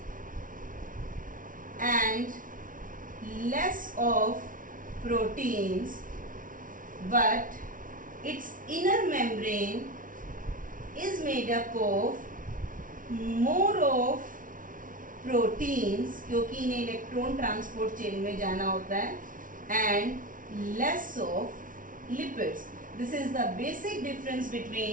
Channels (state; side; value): late; left; 0.39 ms